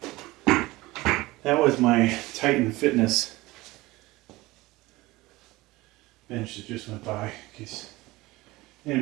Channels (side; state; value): left; quieter; 20.0 dB